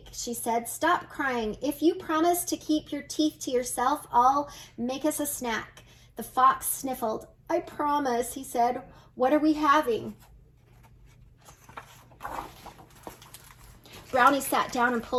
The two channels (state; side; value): identical; both; correlation 1.00